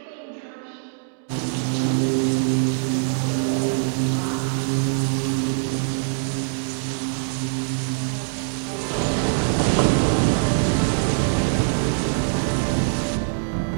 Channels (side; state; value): left; silent; digital silence